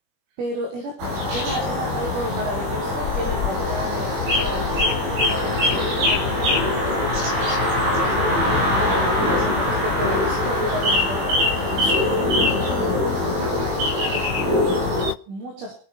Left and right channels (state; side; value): late; left; 21 ms